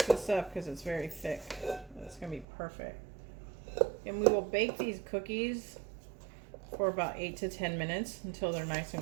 this up because it's very thick. It's gonna be perfect. And we will bake these cookies for about 8 to 10 minutes until they're nice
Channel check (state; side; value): drops out; left; at 2.5 s